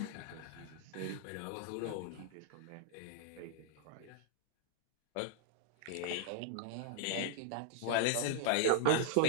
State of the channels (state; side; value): different; both; correlation -0.01